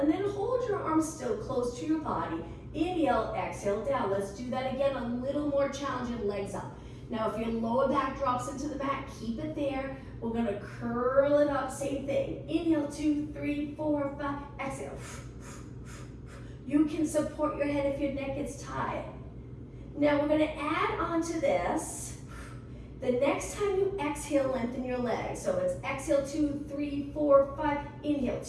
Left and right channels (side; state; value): both; identical; correlation 1.00